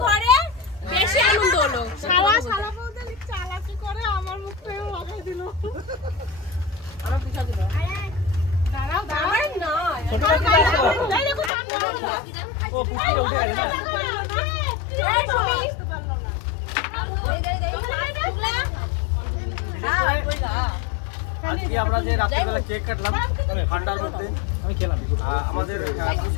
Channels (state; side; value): drops out; right; at 11.5 s